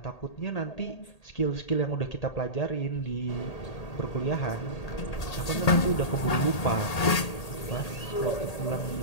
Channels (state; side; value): late; right; 1.8 ms